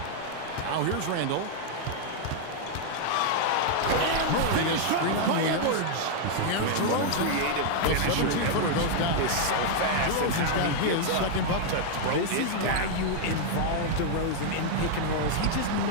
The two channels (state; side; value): different; both; correlation 0.00